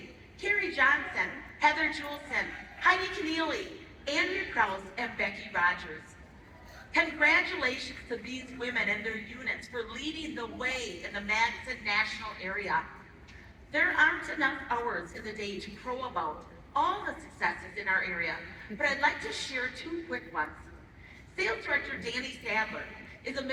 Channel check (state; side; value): identical; both; correlation 1.00